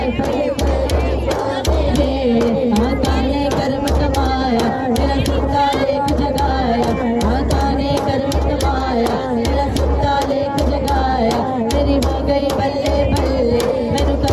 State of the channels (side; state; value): both; identical; correlation 1.00